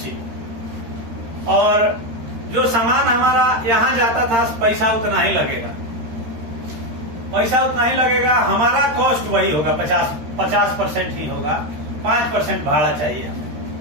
और जो सामान हमारा यहाँ जाता था, पैसा उतना ही लगेगा, पैसा उतना ही लगेगा, हमारा कॉस्ट वही होगा, 50% ही होगा, 5% भाड़ा चाहिए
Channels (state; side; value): late; left; 13 ms